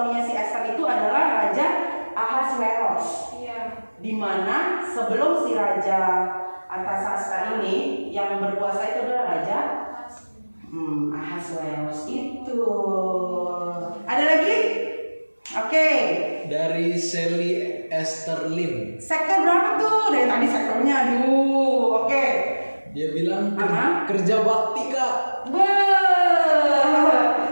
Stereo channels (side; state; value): both; inverted; correlation -1.00